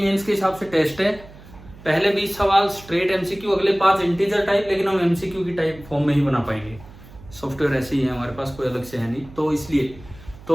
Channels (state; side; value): noise; right; hum, 20 dB below the sound